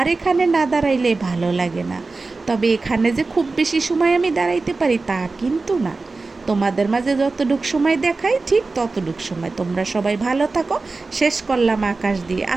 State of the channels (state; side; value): quieter; left; 3.8 dB